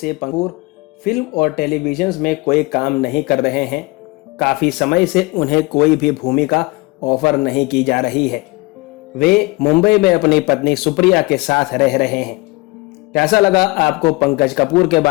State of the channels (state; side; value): quieter; right; 24.1 dB